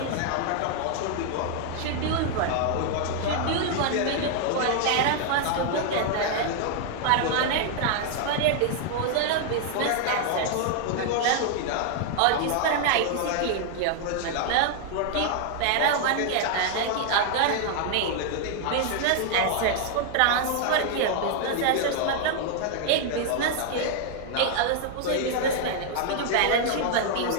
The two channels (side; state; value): both; different; correlation 0.00